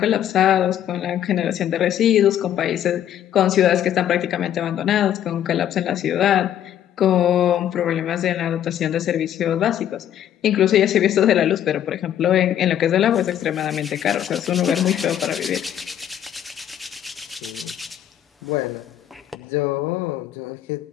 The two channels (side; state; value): right; quieter; 10.7 dB